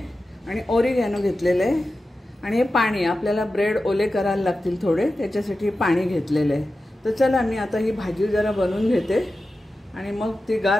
आणि ओरिगॅनो घेतलेले आहे आणि हे पाणी आपल्याला ब्रेड ओले करायला लागतील थोडे, त्याच्यासाठी पाणी घेतलेले आहे। तर चला मी आता ही भाजी जरा बनवून घेते आणि मग ती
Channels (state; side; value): normal; both; correlation 0.93